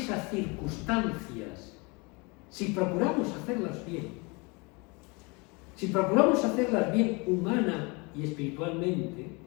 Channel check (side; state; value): right; quieter; 28.5 dB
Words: circunstancias, si procuramos hacerlas bien, humana y espiritualmente,